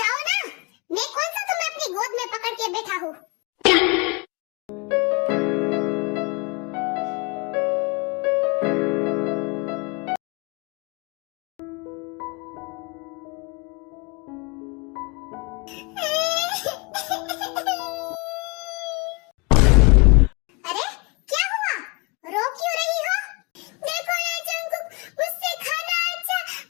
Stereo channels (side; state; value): right; quieter; 29.1 dB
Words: ना, मैं कौन सा तुम्हें अपनी गोद में पकड़ के बैठा हूँ। अरे क्या हुआ, रो क्यों रही हो? देखो ना जंकुक, मुझसे खाना अच्छा